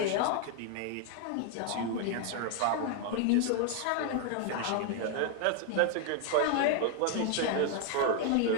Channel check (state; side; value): different; both; correlation 0.00